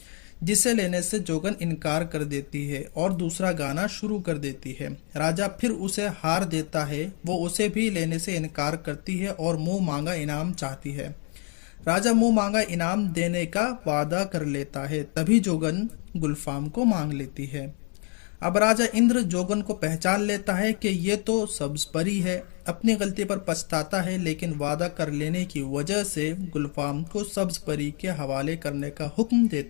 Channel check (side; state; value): right; quieter; 39.5 dB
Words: जिसे लेने से जोगन इनकार कर देती है और दूसरा गाना शुरू कर देती है। राजा फिर उसे हार देता है। वो उसे भी लेने से इनकार करती है और मुंह मांगा इनाम चाहती है। राजा मुंह मांगा इनाम देने का वादा कर लेता है। तभी जोगन गुलफाम को मांग लेती है। अब राजा इंद्र जोगन को पहचान लेता है कि ये तो सब्ज परी है। अपनी गलती पर पछताता है, लेकिन वादा कर लेने की वजह से गुलफाम को सब्ज परी के हवाले करने का हुक्म